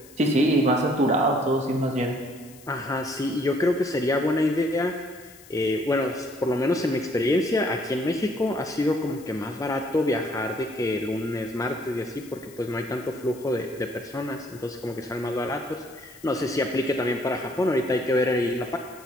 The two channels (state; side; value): noise; left; hiss, 22 dB below the sound